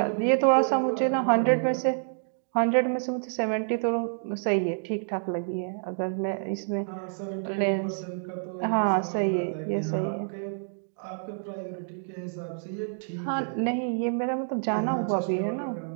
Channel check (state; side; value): silent; left; digital silence